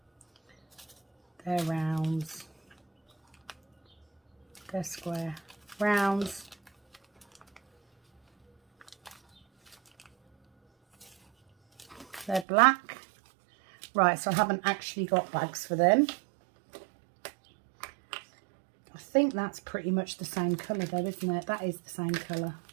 They're rounds. They're square. Rounds. They're black. Right, so I haven't actually got bags for them. I think that's pretty much the same colour though, isn't it? That is the same colour.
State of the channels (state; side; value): drops out; left; at 12.5 s